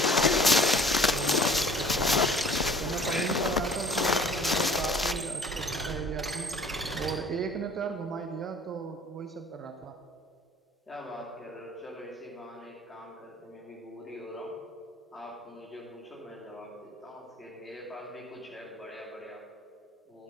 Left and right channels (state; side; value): normal; both; correlation 0.50